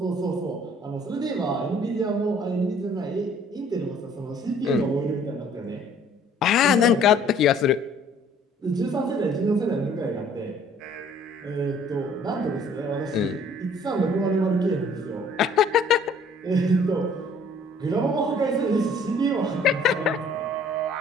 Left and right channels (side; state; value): both; normal; correlation 0.56